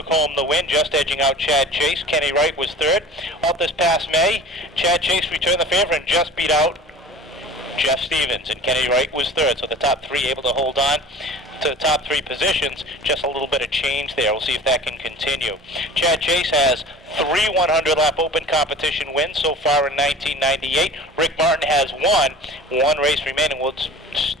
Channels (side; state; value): both; normal; correlation 0.41